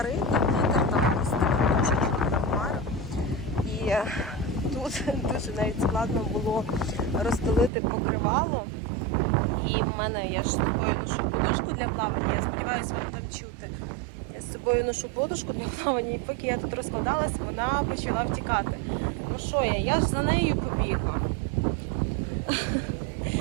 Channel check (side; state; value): left; drops out; at 7.7 s